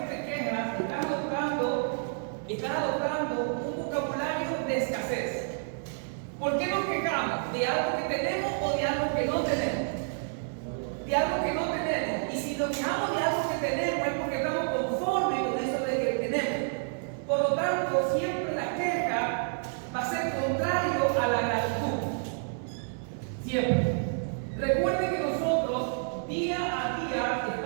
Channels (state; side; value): silent; left; digital silence